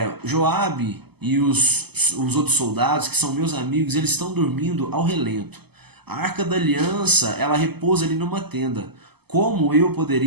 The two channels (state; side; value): late; left; 0.97 ms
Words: Joabe e os outros soldados, que são meus amigos, eles estão dormindo ao relento. A Arca da Aliança, ela repousa ali numa tenda. Como eu